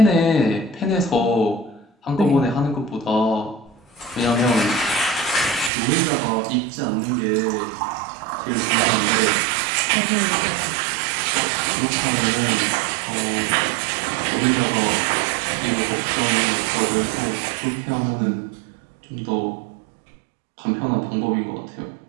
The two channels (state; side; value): drops out; left; at 5.7 s